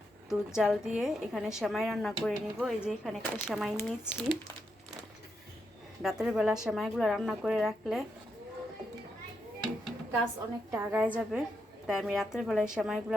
দুধ জাল দিয়ে এখানে সেমাই রান্না করে নিব। এই যে এখানে একটা সেমাই নিয়েছি। রাতের বেলা সেমাইগুলো রান্না করে রাখলে কাজ অনেকটা আগায় যাবে, তাই আমি রাতের বেলায় সেমাইগুলো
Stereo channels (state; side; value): normal; both; correlation 0.82